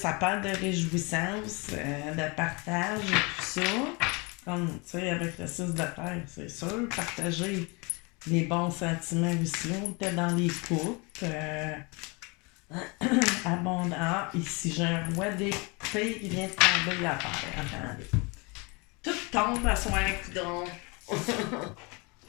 parle de réjouissance, de partage et tout ça. Comme, tu sais, avec le 6 de terre, c'est sûr, partager les bons sentiments aussi. On était dans les couples. Abondant. Ah, ici, j'ai un roi d'épée qui vient de tomber la terre. Attendez. Tout tombe à soir, coudon.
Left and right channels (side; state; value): right; quieter; 29.1 dB